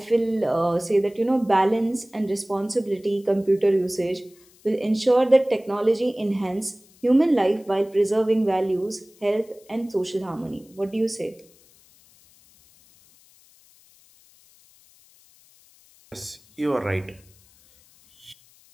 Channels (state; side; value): noise; left; hiss, 29 dB below the sound